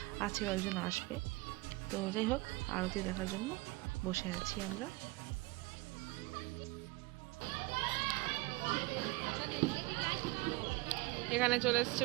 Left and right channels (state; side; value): quieter; left; 22.2 dB